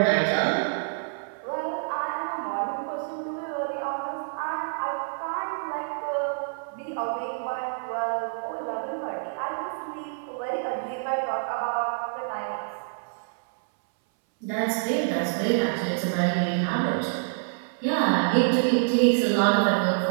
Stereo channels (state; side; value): silent; left; 60 dB below the other